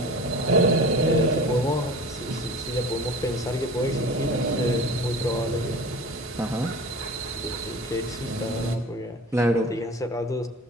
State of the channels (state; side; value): normal; both; correlation 0.37